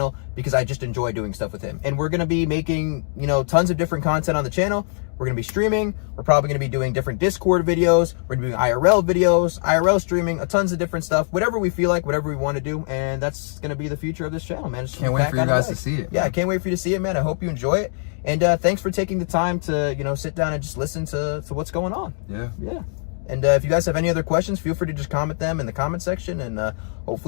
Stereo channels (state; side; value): silent; right; 64 dB below the other